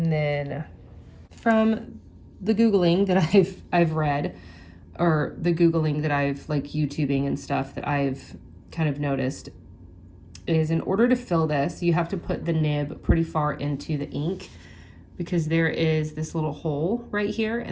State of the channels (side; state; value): both; identical; correlation 1.00